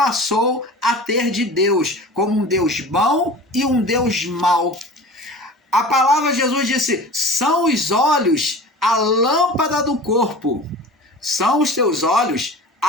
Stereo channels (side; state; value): both; normal; correlation 0.38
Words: a ter de Deus, como um Deus bom e um Deus mau. A palavra de Jesus disse, são os olhos a lâmpada do corpo. São os teus olhos